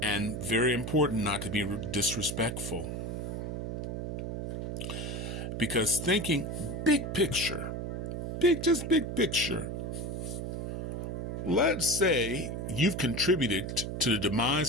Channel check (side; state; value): right; noise; hum, 4 dB below the sound